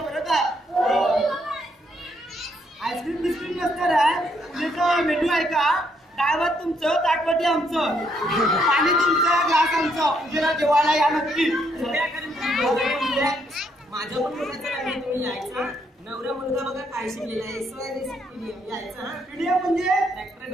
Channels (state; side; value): normal; both; correlation 0.73